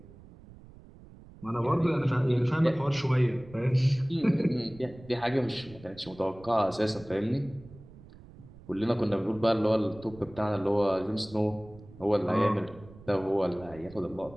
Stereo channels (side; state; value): right; noise; rumble, 20 dB below the sound